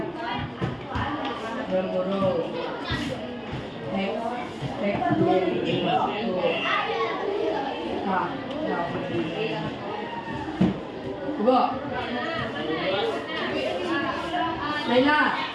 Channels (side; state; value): both; identical; correlation 1.00